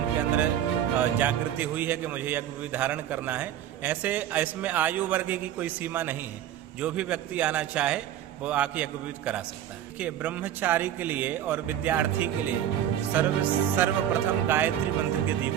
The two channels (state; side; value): quieter; left; 10.9 dB